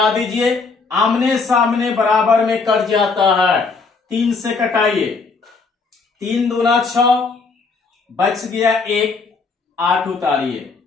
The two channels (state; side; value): quieter; right; 4.4 dB